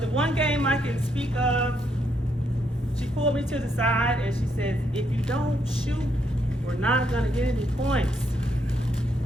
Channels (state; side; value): normal; both; correlation 0.75